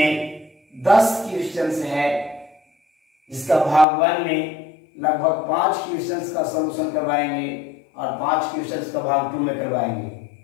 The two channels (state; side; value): drops out; right; at 3.9 s